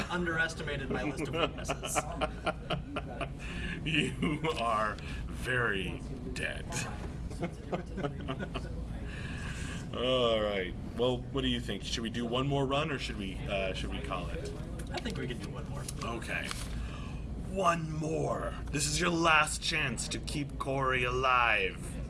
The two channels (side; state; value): both; identical; correlation 1.00